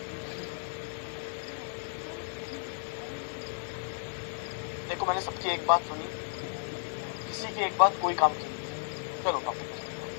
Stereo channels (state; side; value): silent; right; 56 dB below the other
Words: देखो मैंने सबकी एक बात सुनी, किसी की एक बात कोई काम की नहीं। चलो टॉपिक।